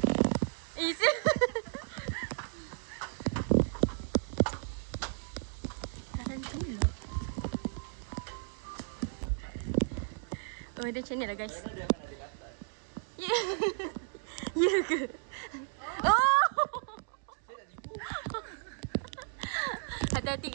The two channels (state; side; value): silent; left; digital silence